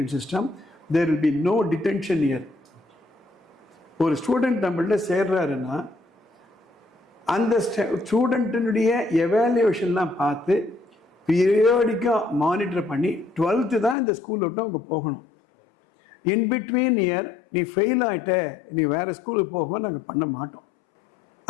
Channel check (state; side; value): drops out; right; at 14.0 s